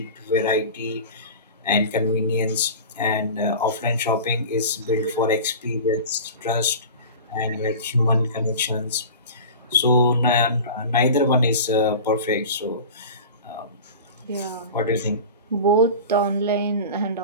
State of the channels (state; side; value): inverted; both; correlation -0.34